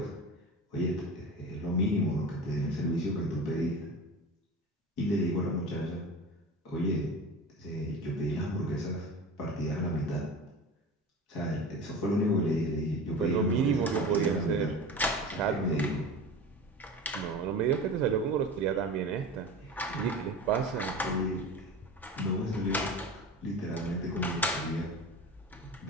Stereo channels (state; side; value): normal; both; correlation 0.32